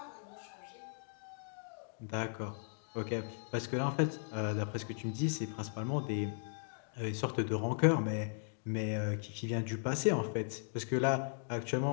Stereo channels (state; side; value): silent; right; digital silence